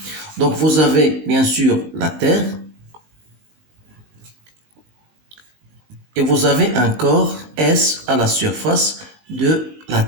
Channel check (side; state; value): left; late; 19 ms